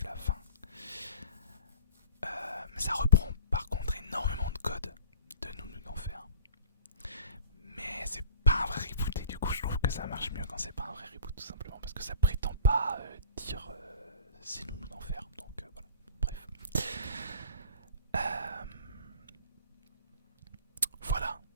la fin. Mais ça reprend par contre énormément de codes de Nounou d'Enfer. Mais c'est pas un vrai reboot et du coup je trouve que ça marche mieux quand c'est pas un vrai reboot tout simplement parce que ça prétend pas dire c'est Nounou d'Enfer, donc voilà, bref. Voilà.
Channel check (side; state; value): both; inverted; correlation -0.43